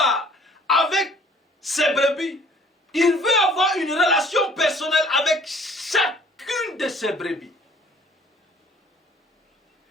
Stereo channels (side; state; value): both; normal; correlation 0.55